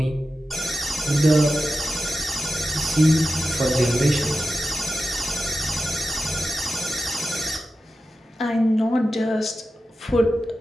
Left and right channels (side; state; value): both; normal; correlation 0.92